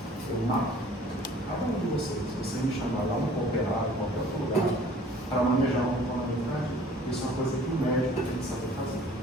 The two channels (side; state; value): both; normal; correlation 0.52